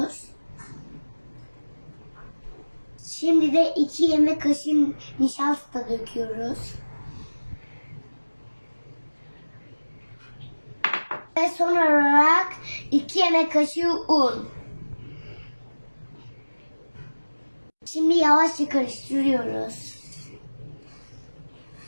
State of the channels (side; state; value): both; inverted; correlation -1.00